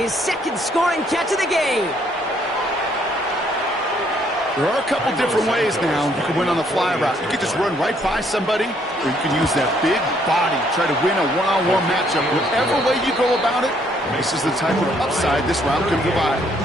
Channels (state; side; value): normal; both; correlation 0.67